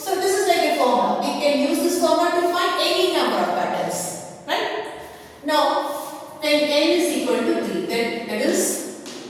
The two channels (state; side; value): identical; both; correlation 1.00